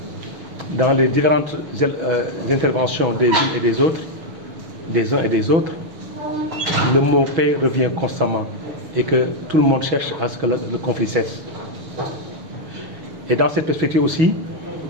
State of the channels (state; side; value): late; left; 6.2 ms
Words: Dans les différentes interventions des unes et des autres, des uns et des autres, le mot paix revient constamment et que tout le monde cherche à ce que le conflit cesse. Et dans cette perspective aussi,